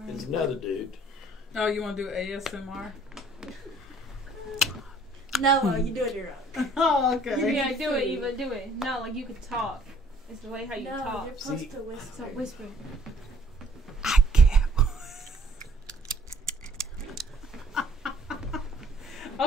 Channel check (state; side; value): normal; both; correlation 0.58